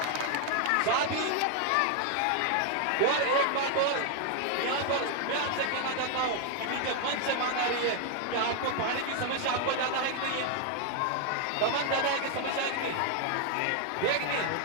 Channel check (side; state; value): both; different; correlation 0.00